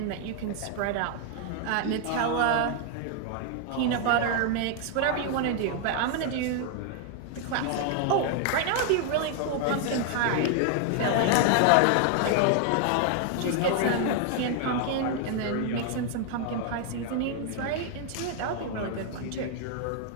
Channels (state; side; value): different; both; correlation 0.00